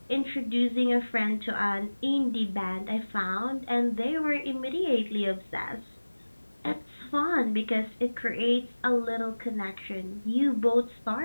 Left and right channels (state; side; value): inverted; both; correlation -1.00